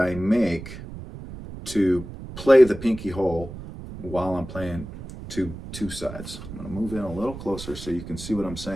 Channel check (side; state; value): right; noise; rumble, 12 dB below the sound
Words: make to play the pinky hole while I'm playing two sides. I'm going to move in a little closer so you can see what I'm